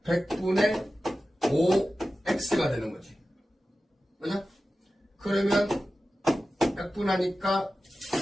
100분의 5x가 되는 거지. 그죠? 그러면 약분하니까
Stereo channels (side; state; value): both; normal; correlation 0.94